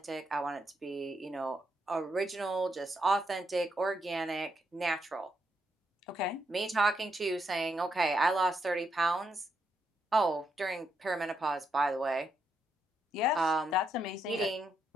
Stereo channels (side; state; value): both; normal; correlation 0.79